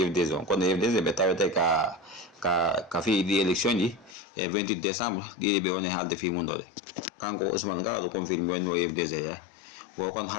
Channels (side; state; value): right; drops out; at 4.2 s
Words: IFDG on kono IFDG ɓe tawete ka fi ɗi élection ji e 28 décembre ɗiɗi ɓe woni haalde fi mum ɗo ɗe kanko Ousmane Gawal o confirme woni o IFDG yahay wo kon